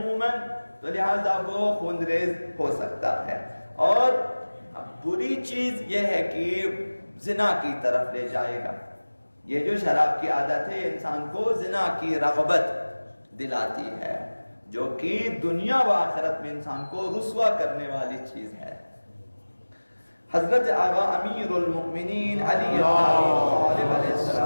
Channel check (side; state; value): both; inverted; correlation -1.00